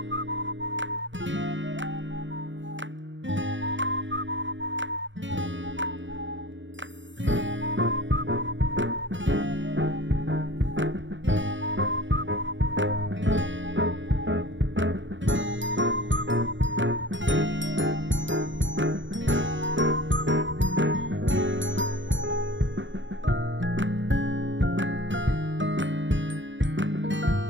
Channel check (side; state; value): left; late; 0.55 ms